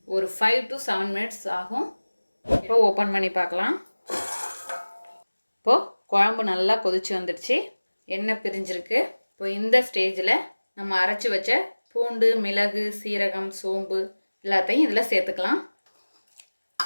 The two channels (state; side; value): inverted; both; correlation -1.00